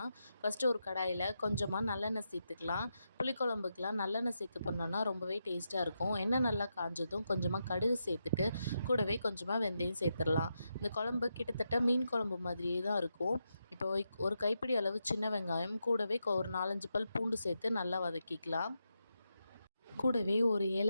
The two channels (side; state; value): both; inverted; correlation -0.85